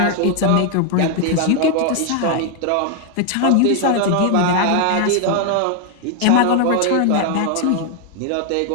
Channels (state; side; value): different; both; correlation 0.00